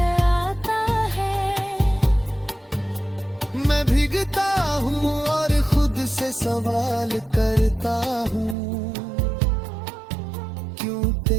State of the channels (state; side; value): drops out; left; at 8.6 s